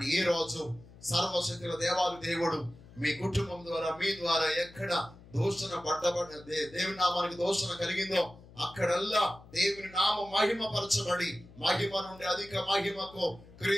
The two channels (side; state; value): left; noise; hum, 21 dB below the sound